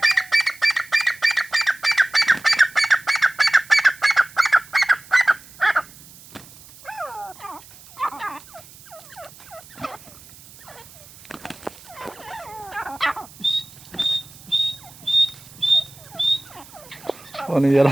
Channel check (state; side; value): noise; right; hiss, 21 dB below the sound